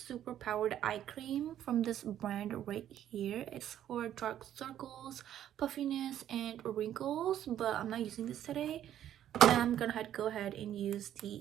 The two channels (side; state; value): left; quieter; 11.1 dB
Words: Powered Eye Cream from this brand right here. It's for dark circles, puffiness, and wrinkles, but I'm not using this today. I'm gonna go ahead and use